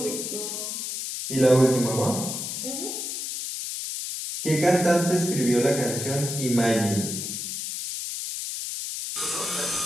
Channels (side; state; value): left; noise; hiss, 5 dB below the sound